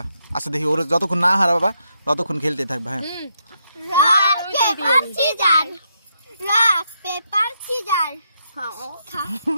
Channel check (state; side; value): inverted; both; correlation -0.79